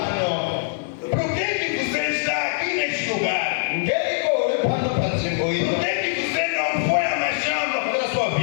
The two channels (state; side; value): silent; right; 56 dB below the other